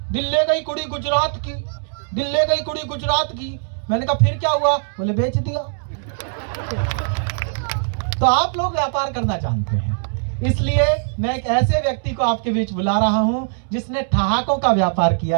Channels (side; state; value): left; silent; 65 dB below the other